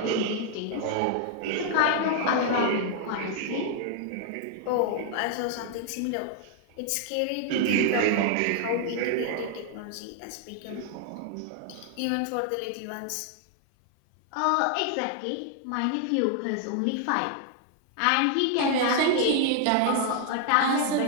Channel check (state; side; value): different; both; correlation 0.00